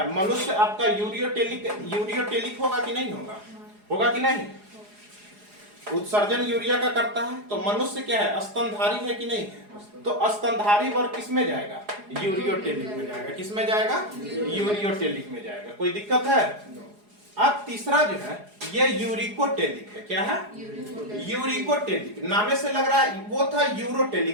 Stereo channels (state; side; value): late; left; 4.8 ms